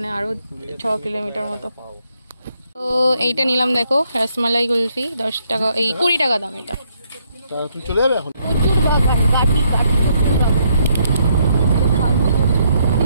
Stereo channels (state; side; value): inverted; both; correlation -0.72